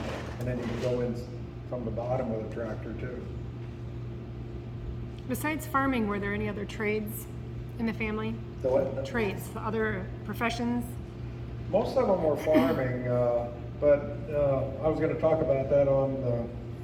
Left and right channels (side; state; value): both; identical; correlation 1.00